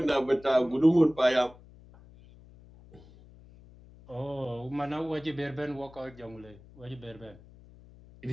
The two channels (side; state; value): left; noise; hum, 22 dB below the sound